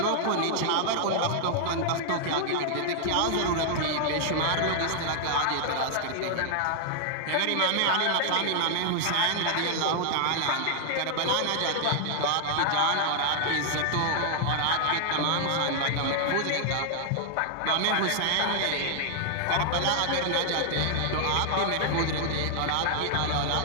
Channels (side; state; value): both; different; correlation 0.00